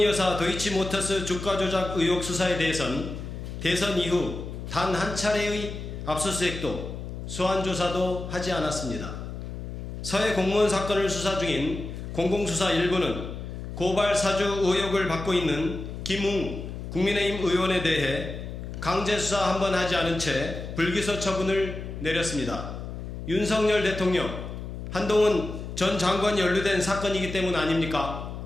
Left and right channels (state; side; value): noise; left; hum, 8 dB below the sound